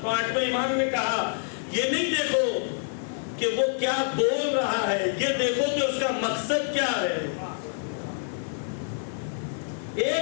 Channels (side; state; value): right; silent; 60 dB below the other